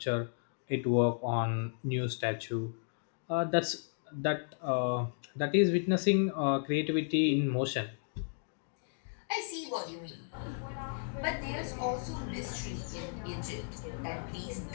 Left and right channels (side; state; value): right; silent; digital silence